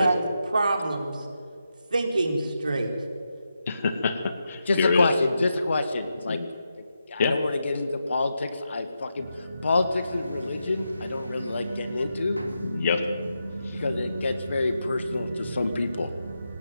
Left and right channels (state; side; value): inverted; both; correlation -0.86